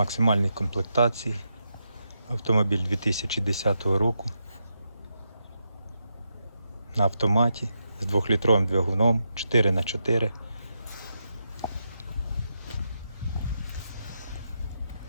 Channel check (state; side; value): inverted; both; correlation -0.84